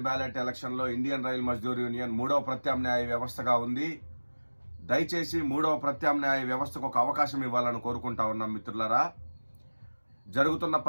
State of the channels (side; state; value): both; inverted; correlation -1.00